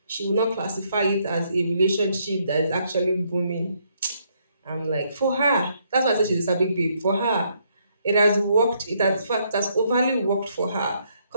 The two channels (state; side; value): inverted; both; correlation -0.72